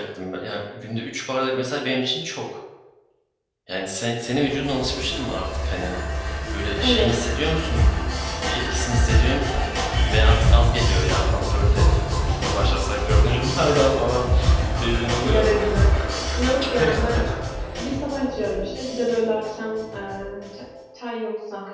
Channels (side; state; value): both; identical; correlation 1.00